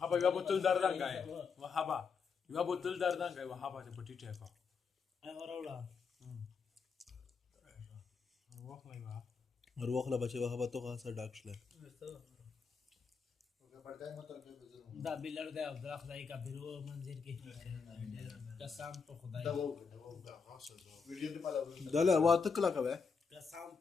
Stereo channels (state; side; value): quieter; right; 5.4 dB